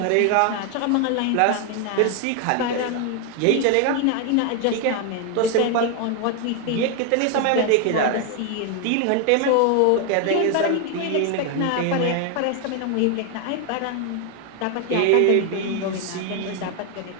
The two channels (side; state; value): both; different; correlation 0.01